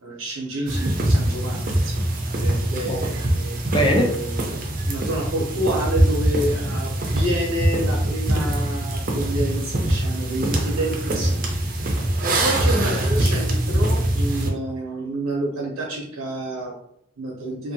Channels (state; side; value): normal; both; correlation 0.72